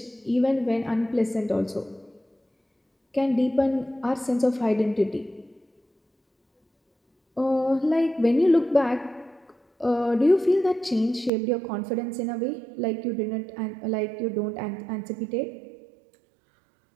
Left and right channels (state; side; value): drops out; left; at 11.3 s